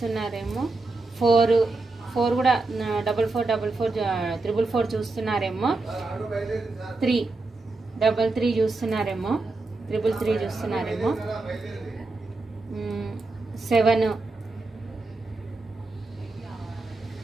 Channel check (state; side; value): quieter; left; 3.4 dB